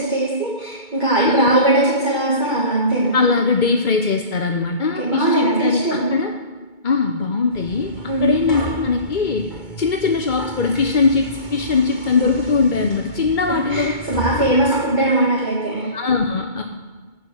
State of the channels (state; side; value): late; right; 2.2 ms